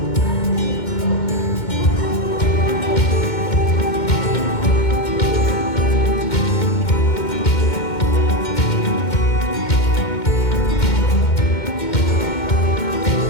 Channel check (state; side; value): late; right; 2.1 ms